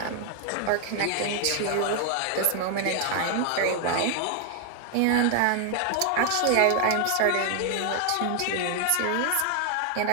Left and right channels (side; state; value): both; different; correlation 0.00